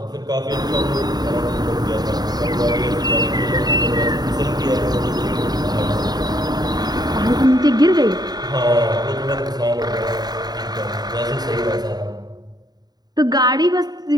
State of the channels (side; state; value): left; late; 0.19 ms